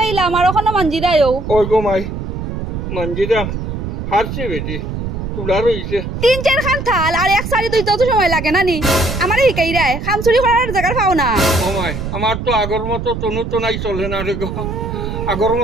আর ওখানে মানজি দেয়ও ওই গো মাই মানজিদা হারছে বেটি তুলার হইছে 3-4 খান থাল আর এক সারি দুই তো সময় লাগে নানি আমারে হিকাই রায় খাম চুরি করার জায়গা পাও না ও মাই আমার তো আগর মতো তনু তনাই চলে না রে গো আগর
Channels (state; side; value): noise; right; rumble, 5 dB below the sound